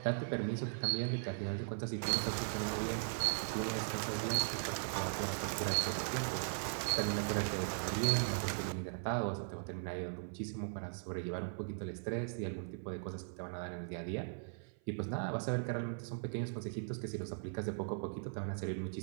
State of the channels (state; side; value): silent; left; 52 dB below the other